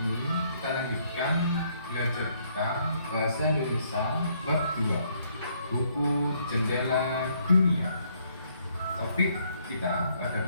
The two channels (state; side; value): inverted; both; correlation -0.69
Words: kita lanjutkan belajar kita Bahasa Indonesia bab 2, buku Jendela Dunia. Topik kita pada